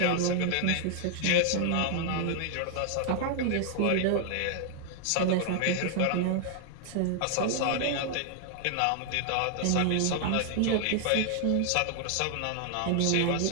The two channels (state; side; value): different; both; correlation 0.00